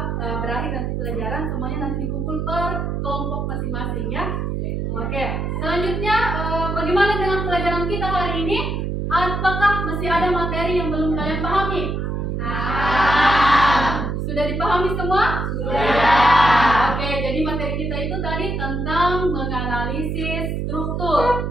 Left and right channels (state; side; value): noise; right; hum, 2 dB below the sound